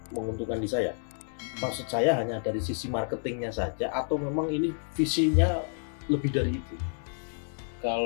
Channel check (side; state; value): right; silent; 58 dB below the other